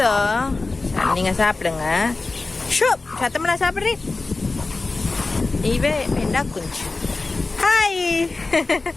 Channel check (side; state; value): right; quieter; 3.5 dB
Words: நீங்க சாப்பிடுங்க. ஷோ சத்தமெல்லாம் சாப்பிடுறீங்க. இவே வெண்டா குஞ்சு. ஹாய்